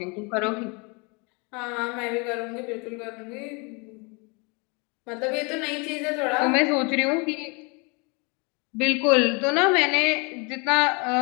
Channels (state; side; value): quieter; right; 30.9 dB